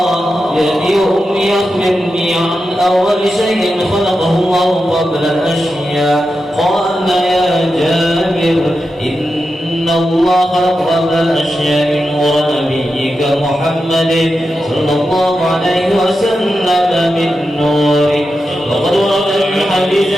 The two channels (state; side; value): normal; both; correlation 0.89